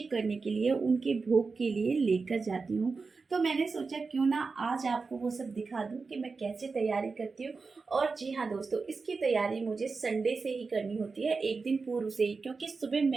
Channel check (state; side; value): quieter; left; 4.4 dB